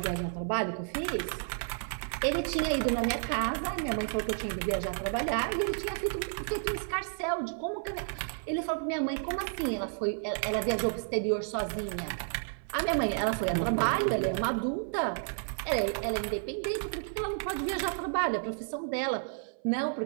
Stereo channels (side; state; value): left; silent; 57 dB below the other